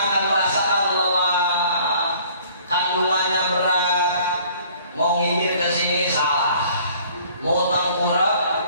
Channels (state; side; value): inverted; both; correlation -0.55